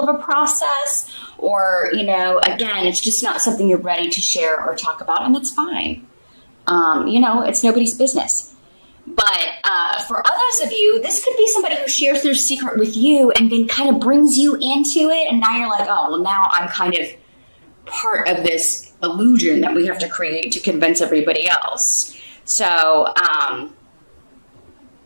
a process, or, you know, again, it's just not something you're ready to share or talk about, and that's fine. You know, it's nobody's business. But for others of you, this could be somebody who shares their secret with you and then kind of brings you into it. And now you're like, oh, well, now I'm kind of part of this illusion that we have to create to convince everybody else. So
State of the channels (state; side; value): inverted; both; correlation -1.00